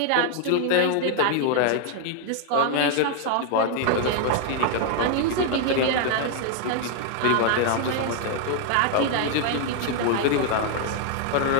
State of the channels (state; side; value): different; both; correlation 0.00